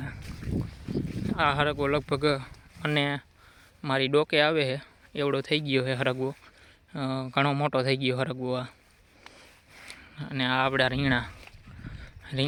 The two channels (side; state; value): both; identical; correlation 1.00